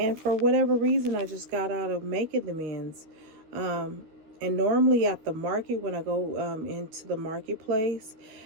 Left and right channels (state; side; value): late; left; 13 ms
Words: for whatever reason, I just got out of making the men's. And normally at the market, when I go into the marketplace,